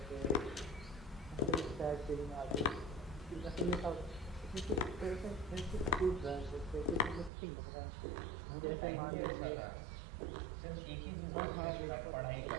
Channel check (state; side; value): drops out; left; at 7.3 s